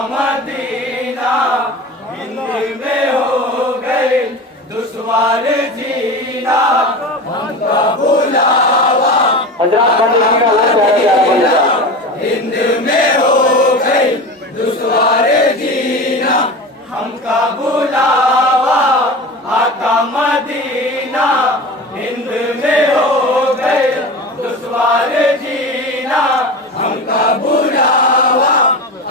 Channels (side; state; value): both; normal; correlation 0.29